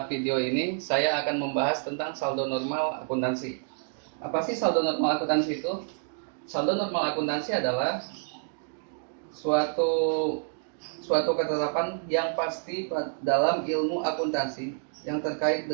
video ini saya akan membahas tentang saldo normal akuntansi. Apa sih saldo normal akuntansi itu? Saldo normal akuntansi adalah suatu suatu ketetapan yang pasti dalam ilmu akuntansi yang terkait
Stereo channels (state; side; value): silent; left; digital silence